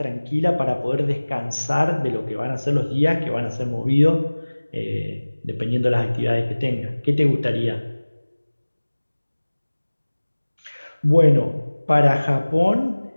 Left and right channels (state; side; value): inverted; both; correlation -1.00